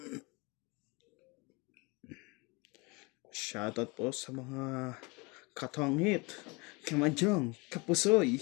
Shoutout po sa mga katongit, kamanjong, kapusoy.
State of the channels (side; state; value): right; quieter; 27.4 dB